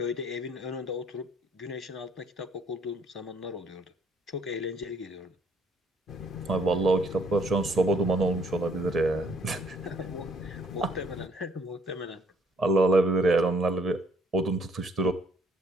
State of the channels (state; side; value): normal; both; correlation 0.63